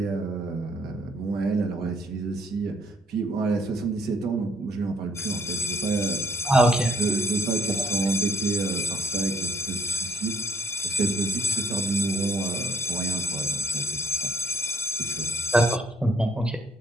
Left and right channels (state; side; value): normal; both; correlation 0.66